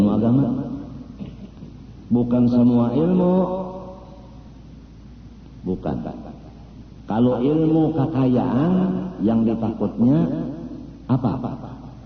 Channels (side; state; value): both; identical; correlation 1.00